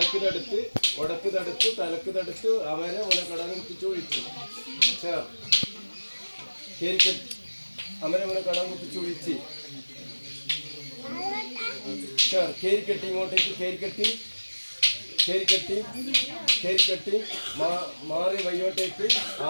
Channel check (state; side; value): inverted; both; correlation -1.00